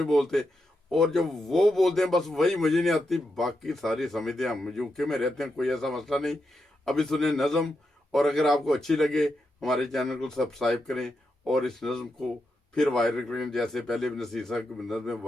बोलते, और जो वो बोलते हैं बस वही मुझे नहीं आती, बाकी सारी समझते हैं। हम यूके में रहते हैं, कोई ऐसा मसला नहीं। अभी सुने नज़म, और अगर आपको अच्छी लगे हमारे चैनल को सब्सक्राइब करें, और इस नज़म को फिर वायरल करें, जैसे पहले नसीर साहब की नज़में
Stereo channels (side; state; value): both; normal; correlation 0.85